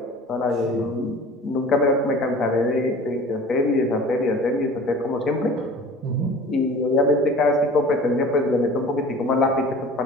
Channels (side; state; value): both; normal; correlation 0.42